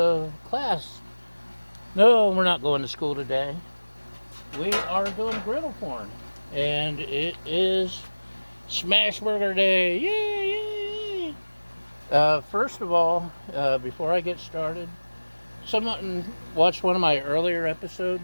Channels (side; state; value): both; inverted; correlation -1.00